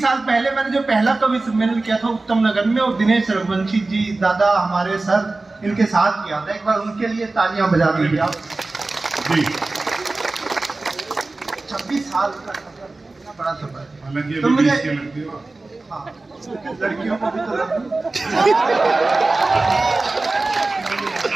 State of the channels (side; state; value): left; quieter; 3.3 dB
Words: पहले मैंने जो पहला कवि सम्मेलन किया था उत्तम नगर में, और दिनेश रघुवंशी जी दादा हमारे सर इनके साथ किया था। एक बार उनके लिए तालियां बजा दीजिए आप जी। 26 साल का इतना बड़ा सफर। तो मुझे हाँ, लड़कियों को भी तो